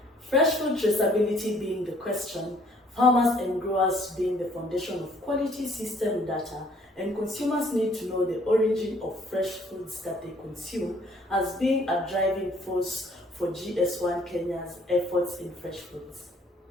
Fresh food traceability being the question, farmers and growers being the foundation of quality system data, and consumers need to know the origin of fresh foods that they consume as being a driving force for GS1 Kenya's efforts in fresh foods.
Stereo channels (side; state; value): both; normal; correlation 0.60